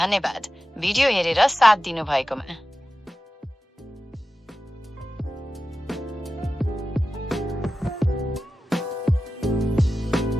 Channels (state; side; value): normal; both; correlation 0.94